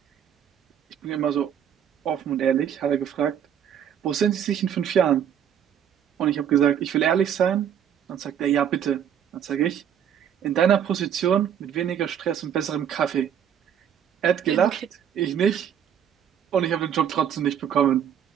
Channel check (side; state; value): left; quieter; 9.0 dB